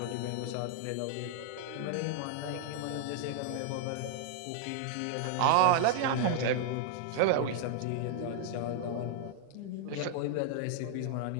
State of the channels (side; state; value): both; different; correlation 0.00